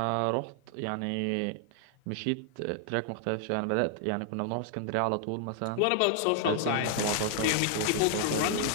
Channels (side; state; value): both; different; correlation 0.00